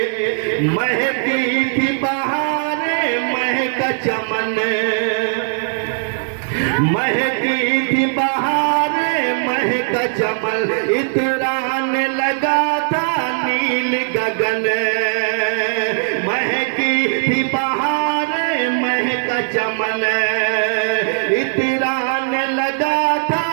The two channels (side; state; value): left; silent; digital silence